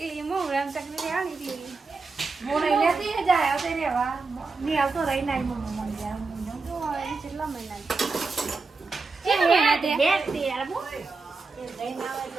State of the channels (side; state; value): left; quieter; 4.1 dB